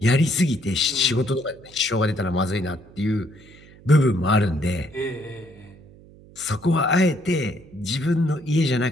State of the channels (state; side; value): noise; right; hum, 23 dB below the sound